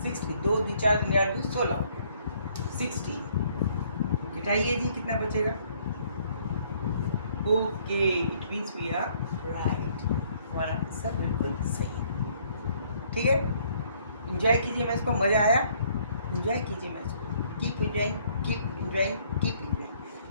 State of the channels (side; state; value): both; inverted; correlation -0.64